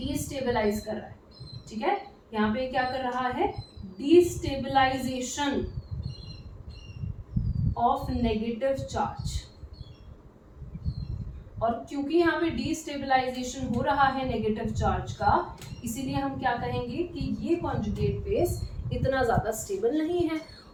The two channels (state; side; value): identical; both; correlation 1.00